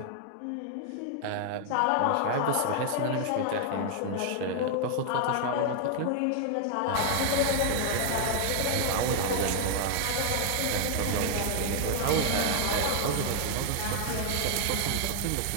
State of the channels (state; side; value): different; both; correlation 0.00